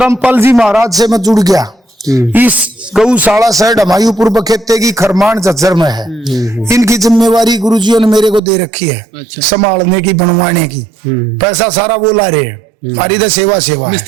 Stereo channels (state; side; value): drops out; left; at 8.4 s